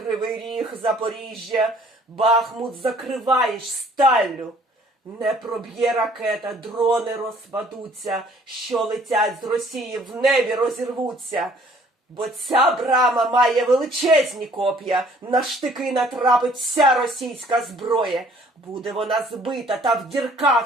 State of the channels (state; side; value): normal; both; correlation 0.58